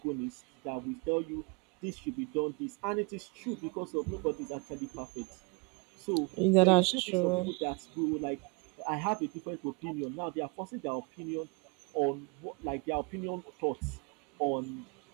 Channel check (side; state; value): left; quieter; 31.2 dB